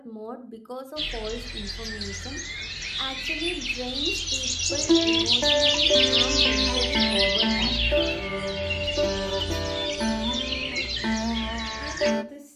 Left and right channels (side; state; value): both; identical; correlation 1.00